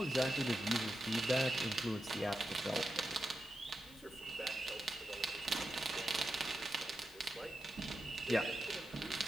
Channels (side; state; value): left; noise; hiss, 20 dB below the sound